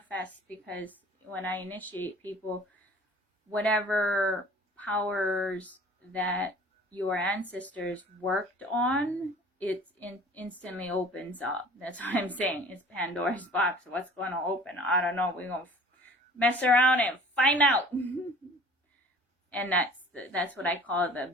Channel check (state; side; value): normal; both; correlation 0.47